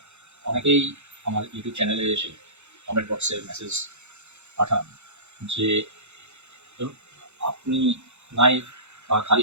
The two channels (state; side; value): late; left; 0.82 ms